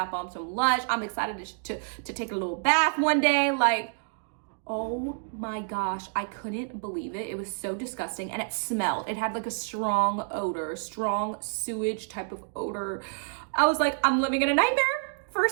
bombs from Lush. I'm excited to take a little bath one day. Like, oh my gosh, I couldn't believe it. It was so disgusting and it smelled. It had like a strong odor, strong sewage type of odor. I was like, I'm living in a nightmare.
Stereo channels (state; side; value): silent; left; digital silence